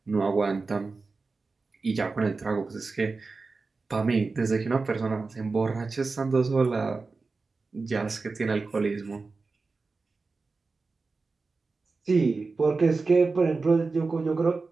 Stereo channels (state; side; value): quieter; left; 4.0 dB